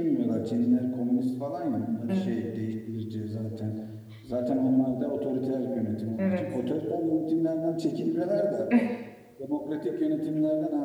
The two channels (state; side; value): identical; both; correlation 1.00